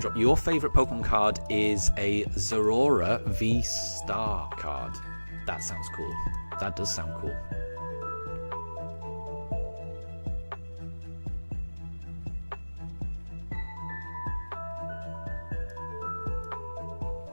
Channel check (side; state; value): both; inverted; correlation -1.00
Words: your favourite Pokemon card is a Zorora V-Star card. That sounds cool. That does sound cool.